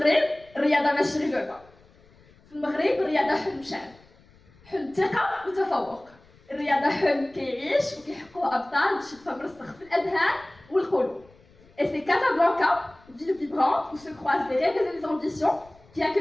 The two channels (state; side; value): noise; left; rumble, 28 dB below the sound